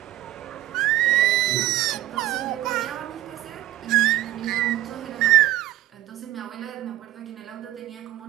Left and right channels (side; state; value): left; quieter; 15.1 dB